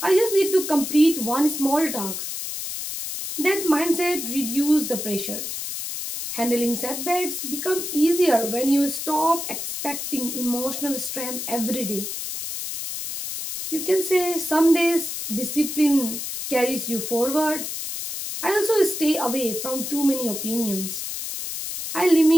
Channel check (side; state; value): left; noise; hiss, 5 dB below the sound